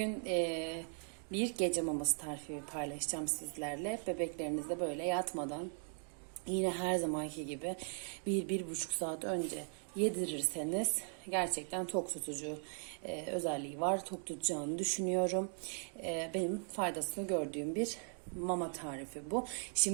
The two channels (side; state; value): left; silent; 52 dB below the other